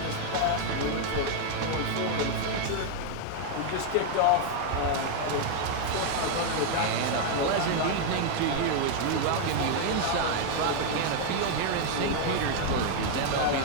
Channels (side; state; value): both; different; correlation 0.00